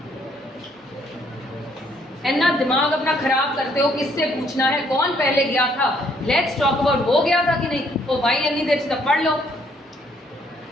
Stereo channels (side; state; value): both; normal; correlation 0.67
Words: ना दिमाग अपना खराब करते हो, किससे पूछना है, कौन पहले गया था, लेट्स टॉक अबाउट वो गया था कि नहीं, तो भाई इतनी देर से पढ़ लो।